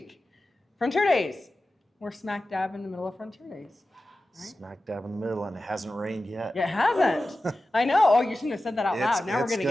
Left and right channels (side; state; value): both; normal; correlation 0.94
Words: Frontier Days. We're smack dab in the middle of Frontier Days. Right? Smack dab in the middle, and it hasn't rained yet. It hasn't. I know. Oh, you shouldn't have said that out loud. Now we're going to